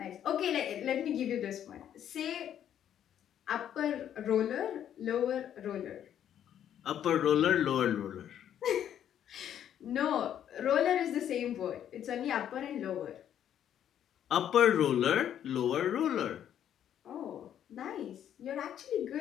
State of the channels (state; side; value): quieter; right; 10.1 dB